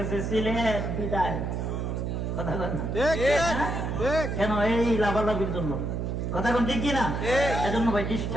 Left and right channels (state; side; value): noise; right; hum, 2 dB below the sound